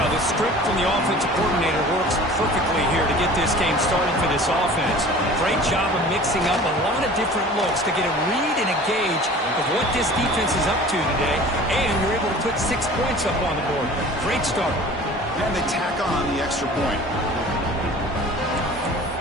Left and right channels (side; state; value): both; normal; correlation 0.43